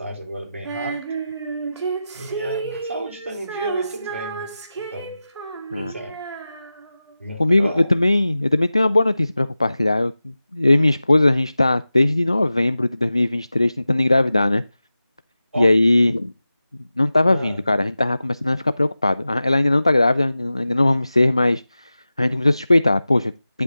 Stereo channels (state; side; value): inverted; both; correlation -0.95